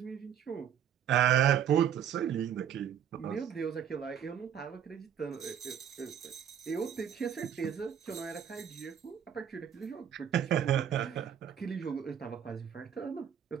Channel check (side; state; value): left; quieter; 9.1 dB